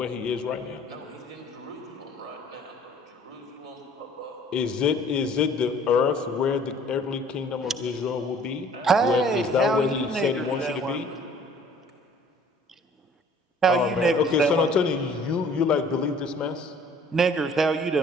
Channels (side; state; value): both; normal; correlation 0.53